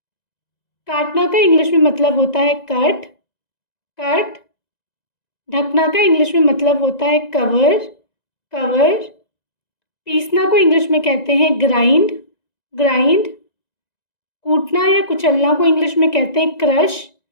काटना का इंग्लिश में मतलब होता है कट, कट। ढकना का इंग्लिश में मतलब होता है कवर, कवर। पीसना को इंग्लिश में कहते हैं ग्राइंड, ग्राइंड। कूटना या कुचलना को इंग्लिश में कहते हैं क्रश,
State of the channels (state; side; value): late; right; 1.9 ms